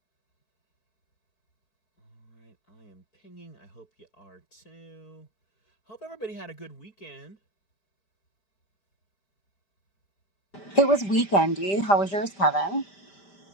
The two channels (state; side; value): late; right; 5.1 ms